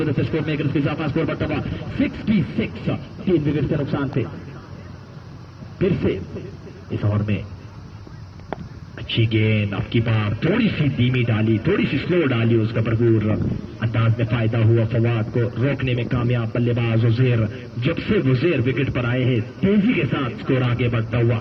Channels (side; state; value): both; identical; correlation 1.00